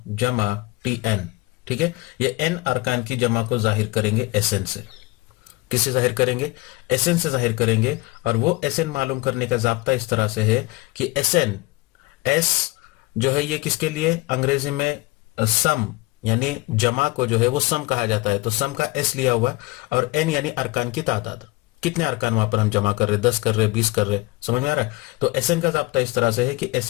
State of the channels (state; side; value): quieter; right; 21.7 dB